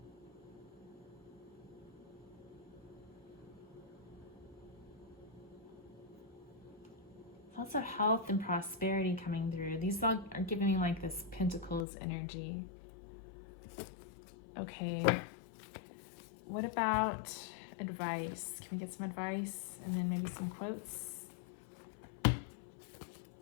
Lots of health and prosperity coming through. These all are giving me like this Pentacles energy. Okay. What about advice? Can we get some advice and then maybe some quotes? I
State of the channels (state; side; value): drops out; right; at 11.9 s